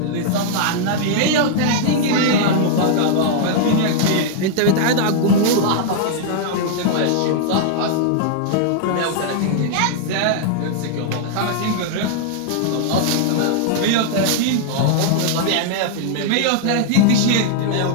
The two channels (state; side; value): different; both; correlation -0.01